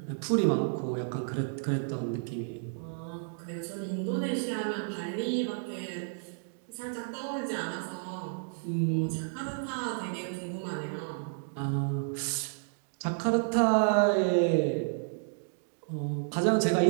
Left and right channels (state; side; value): silent; left; digital silence